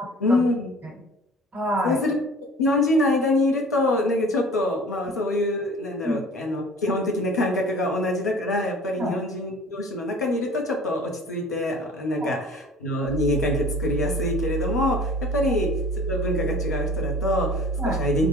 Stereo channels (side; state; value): both; normal; correlation 0.45